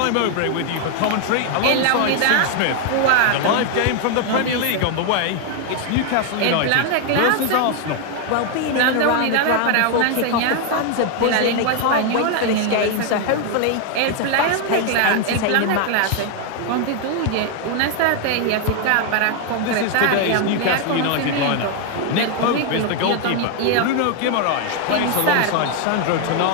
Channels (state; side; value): different; both; correlation 0.00